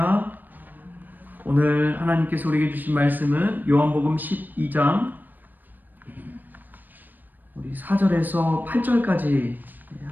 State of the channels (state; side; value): late; left; 0.089 ms